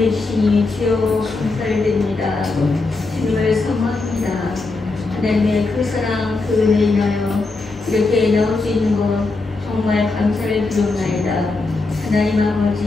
주시니 주여 감사를 드립니다. 주님을 사모합니다. 하나님의 그 사랑 그 은혜 인하여 이렇게 나올 수 있는 것 정말 감사를 드리옵나이다. 하나님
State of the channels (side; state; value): right; quieter; 3.6 dB